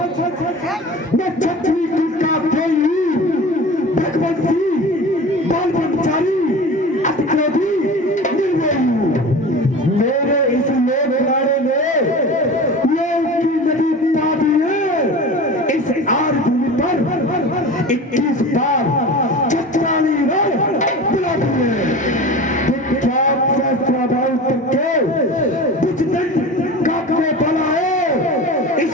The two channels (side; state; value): both; normal; correlation 0.34